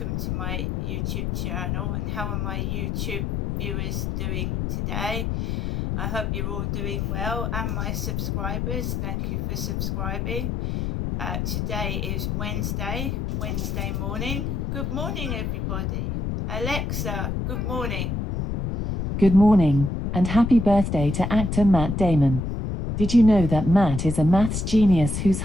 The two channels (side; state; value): left; noise; rumble, 2 dB below the sound